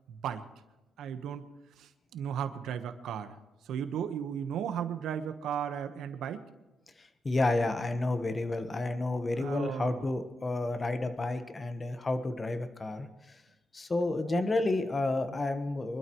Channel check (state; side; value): normal; both; correlation 0.85